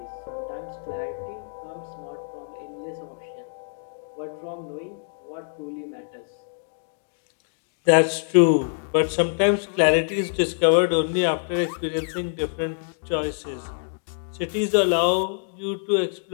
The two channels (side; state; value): right; silent; digital silence